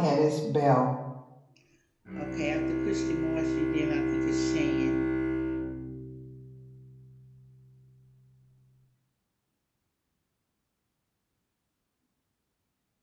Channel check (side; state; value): both; identical; correlation 1.00